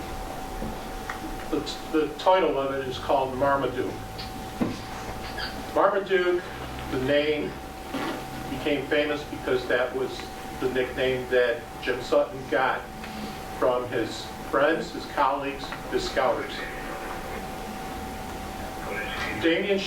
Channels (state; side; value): identical; both; correlation 1.00